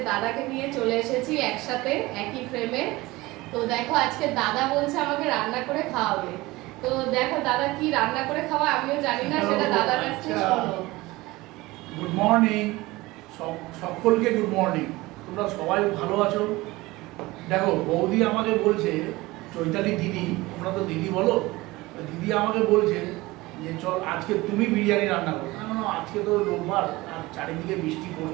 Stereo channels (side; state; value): left; quieter; 20.4 dB